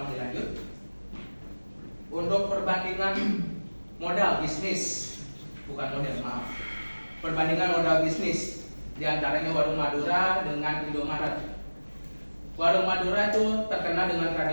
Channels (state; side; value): inverted; both; correlation -1.00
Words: dilanjut. Untuk perbandingan modal bisnis, bukan modal, maaf. Perbandingan modal bisnis di antaranya Warung Madura dengan Indomaret. Warung Madura itu terkenal dengan